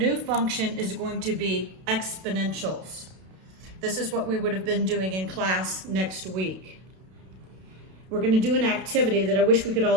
function is going to be exponentials. This is what we would have been doing in class next week. We're going to do an activity that I wish we could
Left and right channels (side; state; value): left; late; 32 ms